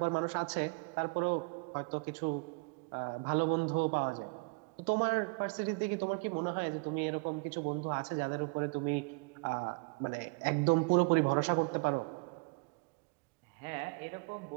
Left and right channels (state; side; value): quieter; left; 31.5 dB